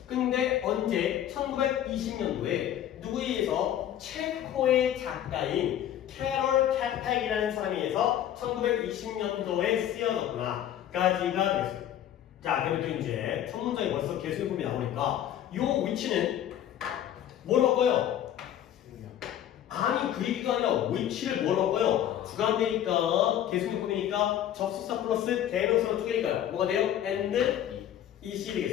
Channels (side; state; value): right; quieter; 11.0 dB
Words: 근데 언제? 1920년도에 누구에 의해서 체코의 작가인 캐럴 캐팩이라는 사람에 의해서 1920년도에 쓰여졌구나 까지가 됐어요. 자, 그리고 이제 첫 문장이 벌써 계속해봄이 나오니까 요 위치는 뭐로 바꿔요? 아니 그 얘기가 아니라 위치를 뭐로 바꿔요? 주관되니까 계속해봄이니까 접속사 플러스 대명사로 쪼개니까요. 뭐가 돼요? and 이시